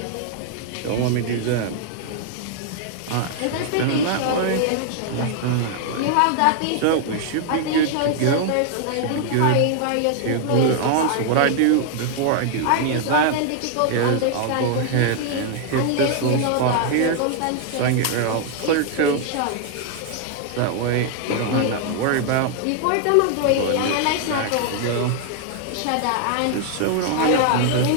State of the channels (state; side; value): different; both; correlation 0.00